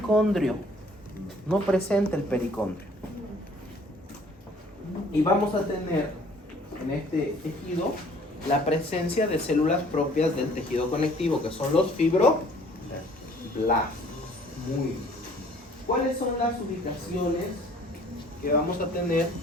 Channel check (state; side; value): normal; both; correlation 0.56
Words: No presenta el pericondrio. Y vamos a tener en este tejido la presencia de células propias del tejido conectivo, que son los fibroblastos. Muy bien. ¿Cuáles son las ubicaciones que vamos a tener